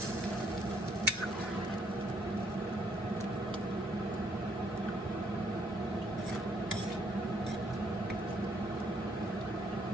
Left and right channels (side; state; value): right; noise; hum, 25 dB below the sound